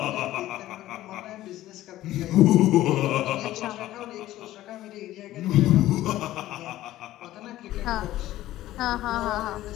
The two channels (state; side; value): quieter; right; 14.9 dB